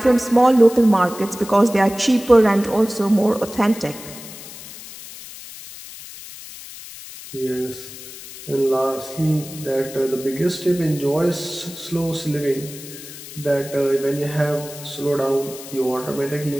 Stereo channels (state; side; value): noise; left; hiss, 14 dB below the sound